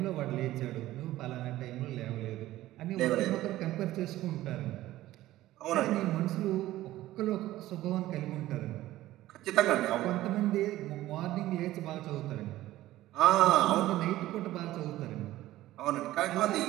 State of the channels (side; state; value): left; quieter; 15.4 dB